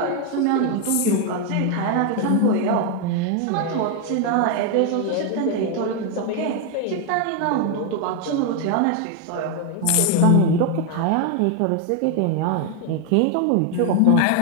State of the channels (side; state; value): both; different; correlation 0.01